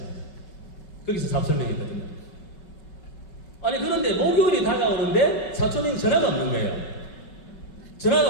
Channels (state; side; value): late; right; 5.3 ms